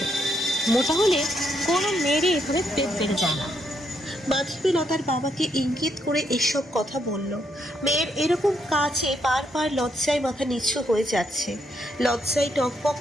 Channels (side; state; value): both; normal; correlation 0.76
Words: মোটা হলে কোনো মেয়েরই এভাবে পেট বেড়ে যায় না। মাধবীলতার বাবাকে ইঙ্গিত করে এসব কথা বলল। মেয়ের এরকম কাজে বারবার লজ্জায় মাথা নিচু হয়ে যাচ্ছে। লজ্জায় টকবক